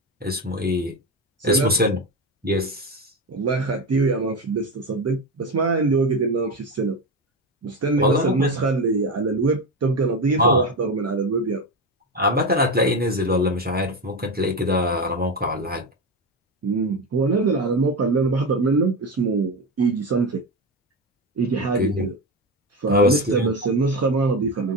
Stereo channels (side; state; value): both; normal; correlation 0.18